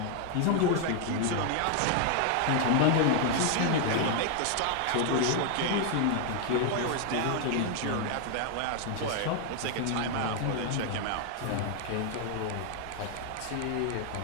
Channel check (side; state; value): both; different; correlation 0.00